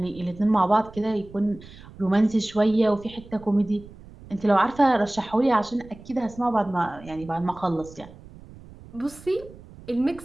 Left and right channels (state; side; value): noise; right; rumble, 19 dB below the sound